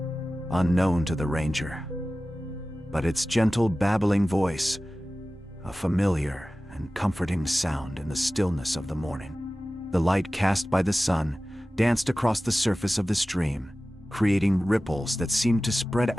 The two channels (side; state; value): both; normal; correlation 0.96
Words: unknown to the ranger. But its gentle babbling voice, a familiar and comforting sound in the stillness of the morning. The light cast by the sun danced across the surface of the stream, creating ripples that seemed to spread